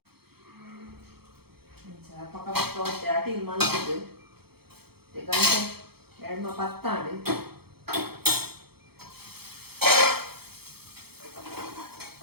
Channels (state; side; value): late; left; 0.96 ms